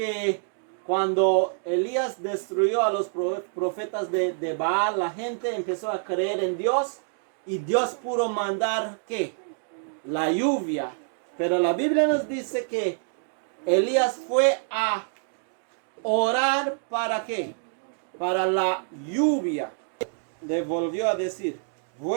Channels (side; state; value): left; silent; digital silence